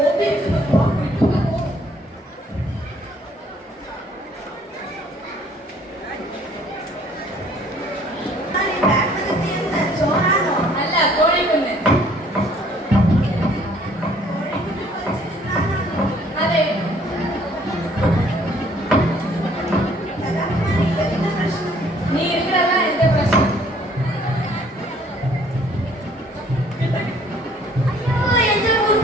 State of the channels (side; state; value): both; normal; correlation 0.60